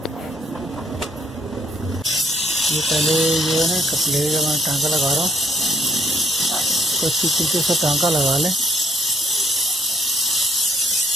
ये पहले जो है ना कपलेगा मैं टांका लगा रहा हूँ, तो अच्छी तरीके से टांका लगा लें।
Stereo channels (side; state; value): both; normal; correlation 0.64